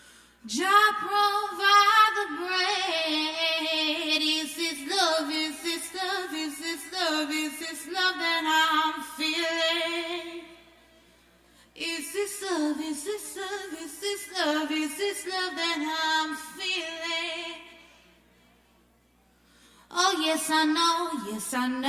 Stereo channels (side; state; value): both; identical; correlation 1.00